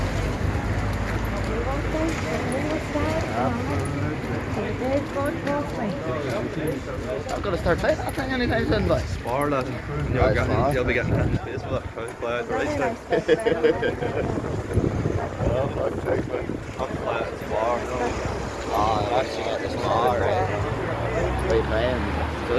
I've got to start playing that thing anytime soon, boy. Spar, lad. You'll be getting in space with that play at the race time. Oh, fuck, thanks, man. I'll play at Spar. Oh, I've actually got this car, right? What are you playing?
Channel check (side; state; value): both; identical; correlation 1.00